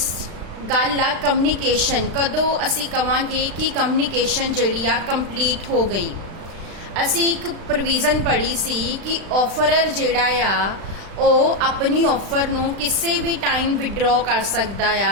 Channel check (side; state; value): left; late; 36 ms